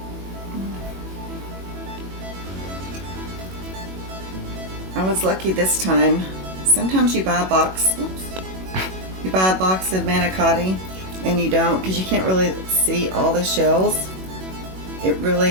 I was lucky this time. Sometimes you buy a box, you buy a box of manicotti and you don't, because you can't really see all the shells. It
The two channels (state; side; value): late; left; 21 ms